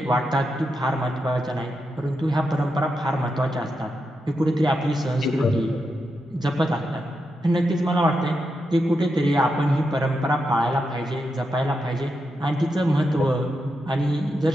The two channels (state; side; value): normal; both; correlation 0.85